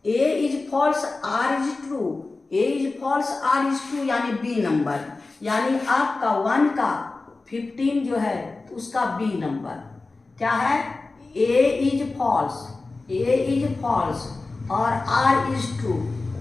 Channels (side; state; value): right; quieter; 3.5 dB